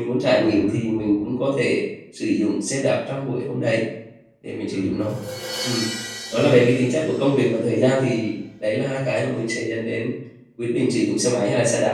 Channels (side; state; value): both; identical; correlation 1.00